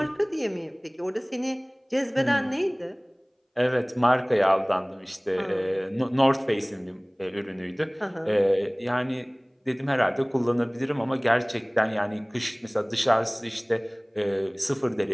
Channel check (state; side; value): identical; both; correlation 1.00